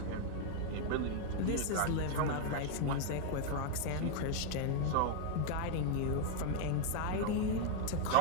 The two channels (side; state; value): both; different; correlation 0.00